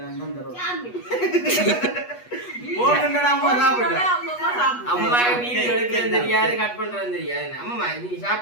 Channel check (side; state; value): right; late; 8.3 ms